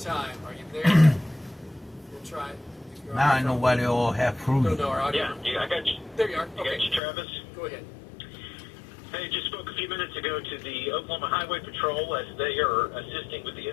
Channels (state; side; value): drops out; right; at 7.0 s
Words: Are you there? We'll try it. If you're on Now the I know phone. why they all have fruit. No, no, our audio. Yeah, I got you. There you are. I got Okay, you, Travis. go ahead. Hey, just spoke a few minutes ago to the Oklahoma Highway Patrol as they are assisting with the